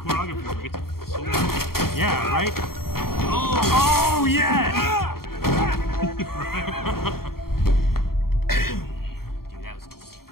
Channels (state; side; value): late; right; 0.93 ms